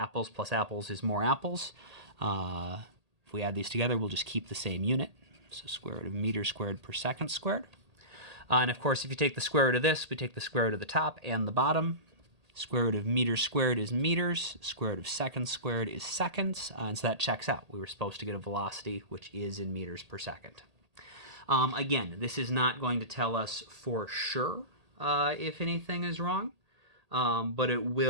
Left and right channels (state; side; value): late; left; 1.8 ms